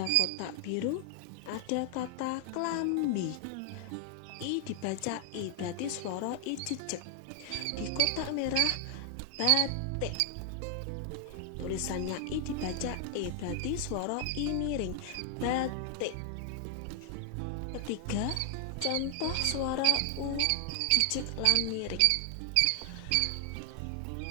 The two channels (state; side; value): different; both; correlation 0.00